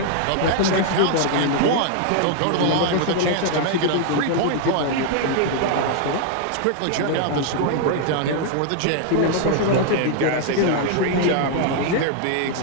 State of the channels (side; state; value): both; different; correlation 0.00